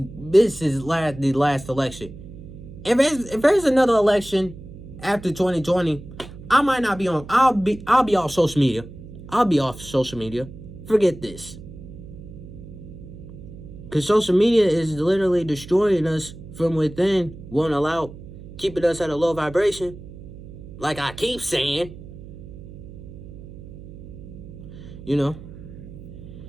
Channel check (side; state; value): right; noise; hum, 15 dB below the sound